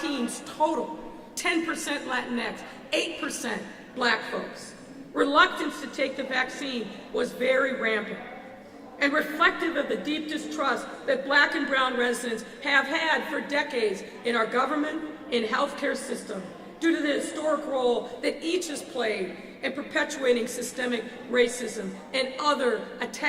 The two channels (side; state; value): both; identical; correlation 1.00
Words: total, 10% Latinx, 8% black folks. Reluctance to take the vaccine was very rampant and reflective of the deep distrust that black and brown residents have had for decades in our government, in healthcare system, due to the historic role that each has played in perpetuating systemic racism and other